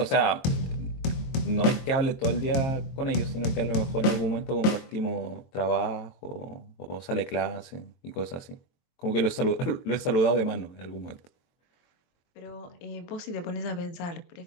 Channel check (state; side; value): late; right; 23 ms